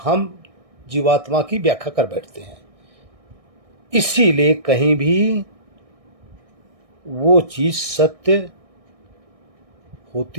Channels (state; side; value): late; left; 1.6 ms